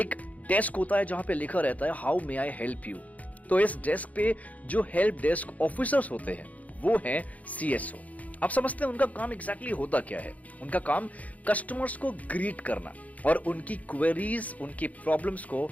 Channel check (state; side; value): late; right; 0.072 ms